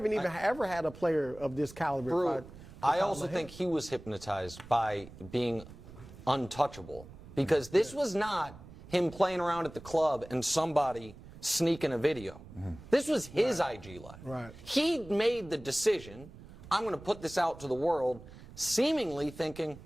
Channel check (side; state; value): right; noise; rumble, 17 dB below the sound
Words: even ever had a player of this caliber. I also think he was hypnotized by being untouchable, because this was not him playing around at the club and somebody sneaking a video. This was his IG live. Right. He made the decision, I'm going to put this out to the world, seemingly thinking,